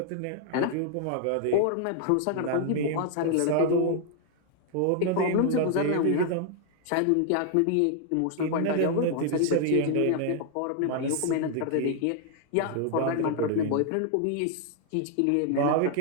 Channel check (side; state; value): both; different; correlation 0.00